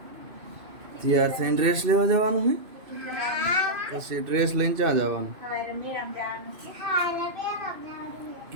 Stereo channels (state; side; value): late; left; 2.6 ms